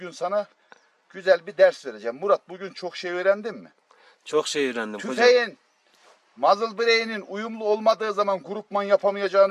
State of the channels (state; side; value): identical; both; correlation 1.00